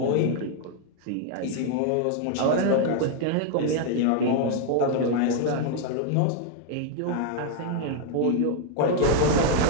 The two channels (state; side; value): different; both; correlation 0.00